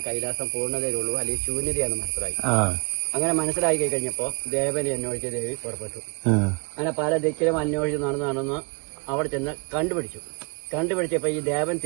കൈലാസം പൂർണ്ണതയിലുള്ളൂ, അല്ലെങ്കിൽ ശൂന്യതയാണ് മനസ്സിലായി. അങ്ങനെ മനസ്സിലാക്കി കഴിഞ്ഞപ്പോ ദേവനെ അന്വേഷിച്ച് ദേവി പുറപ്പെട്ടു. അങ്ങനെ പല ദിക്കിലും അന്വേഷിച്ച് നടന്ന് അവിടെ ചെന്ന് കണ്ടുപിടിച്ചപ്പോ ഈ ദേവൻ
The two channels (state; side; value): quieter; left; 31.2 dB